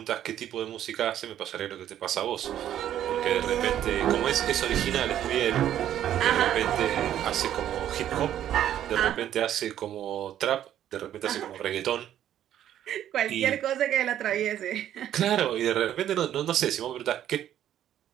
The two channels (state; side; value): quieter; left; 11.2 dB